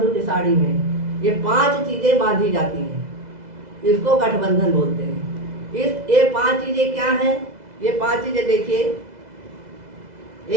की साड़ी में ये 5 चीज़ें बांधी जाती हैं। इसको गठबंधन बोलते हैं। ये 5 चीज़ें क्या हैं? ये 5 चीज़ें देखिए,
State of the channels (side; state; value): left; late; 2.0 ms